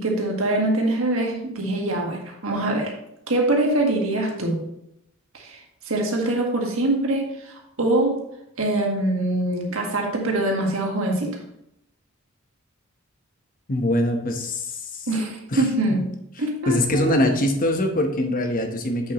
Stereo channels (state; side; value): normal; both; correlation 0.32